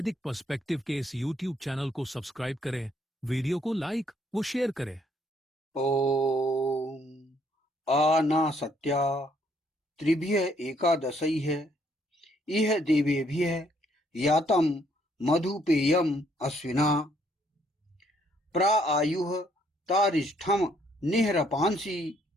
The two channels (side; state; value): both; normal; correlation 0.68